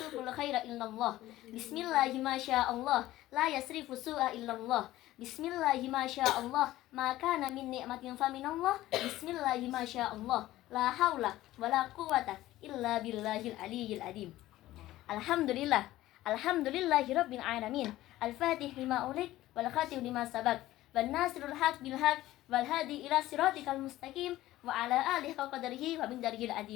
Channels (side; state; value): right; quieter; 15.7 dB